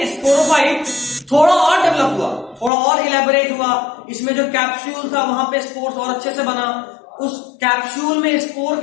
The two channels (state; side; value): drops out; right; at 2.7 s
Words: स्पोरोफाइट थोड़ा और डेवलप हुआ, थोड़ा और इलेबोरेट हुआ। इसमें जो कैप्सूल था वहां पे स्पोर्स और अच्छे से बना, उस कैप्सूल में स्पोर